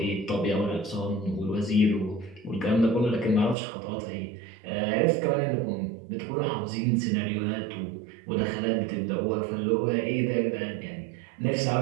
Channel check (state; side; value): drops out; left; at 3.6 s